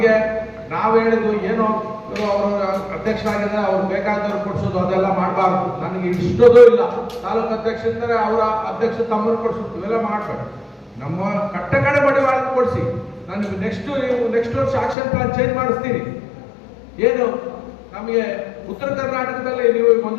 ನಾವು ಹೇಳಿದ್ದು ಏನೋ ಅವರು ಅಧ್ಯಕ್ಷರಾಗಿದ್ದಾರೆ, ಅವ್ರು ಬೇಕಾದವ್ರು ಕೊಡಿಸೋದು ಅದೆಲ್ಲ ಮಾಡಬಾರ್ದು. ನನಗೆ ಇಷ್ಟೋದು ಇಲ್ಲ. ತಾಲೂಕು ಅಧ್ಯಕ್ಷ ಇದ್ದಾರೆ, ಅವರ ಅಧ್ಯಕ್ಷ ತಮ್ಮನ್ನು ಕೊಡಿಸೋದು ಇವೆಲ್ಲ ಮಾಡ್ಬೇಕು. ನಮ್ಮ ಕಡೆ ಮಡಿವಾಳ ಕೊಡಿಸಿ. ನಾನು ನೆಕ್ಸ್ಟ್ ವರ್ಷ ಆಕ್ಷನ್ ಪ್ಲಾನ್ ಚೇಂಜ್ ಮಾಡಿಸ್ತೀನಿ. ಏನು ನಮಗೆ ಉತ್ತರ ಕರ್ನಾಟಕದಲ್ಲಿ ನೀವು 1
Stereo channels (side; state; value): right; drops out; at 15.0 s